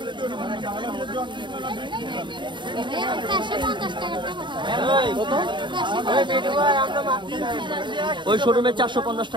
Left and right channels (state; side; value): late; left; 0.23 ms